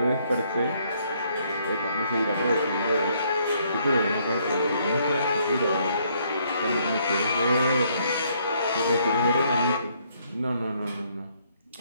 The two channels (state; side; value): inverted; both; correlation -0.69